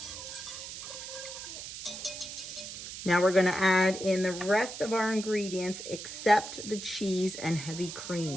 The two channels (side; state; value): right; noise; hiss, 9 dB below the sound